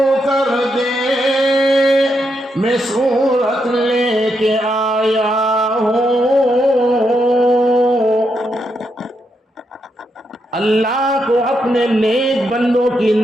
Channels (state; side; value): normal; both; correlation 0.81